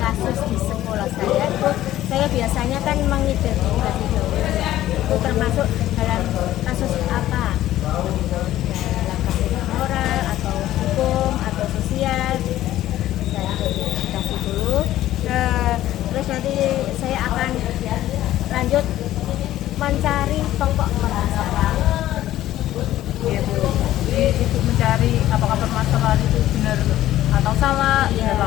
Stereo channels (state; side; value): quieter; right; 13.9 dB